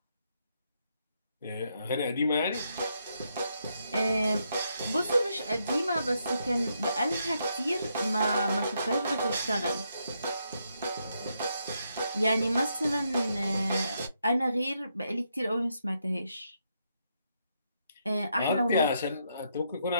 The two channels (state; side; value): inverted; both; correlation -0.79